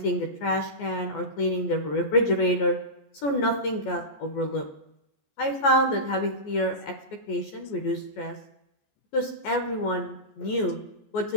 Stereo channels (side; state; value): right; late; 14 ms